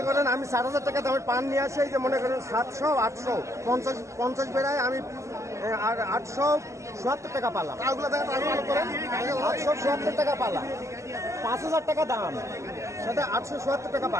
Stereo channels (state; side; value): late; left; 0.14 ms